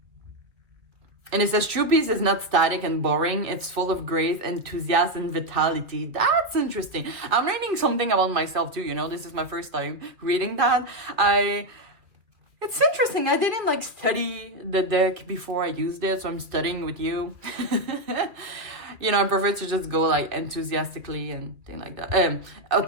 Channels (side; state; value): left; late; 2.4 ms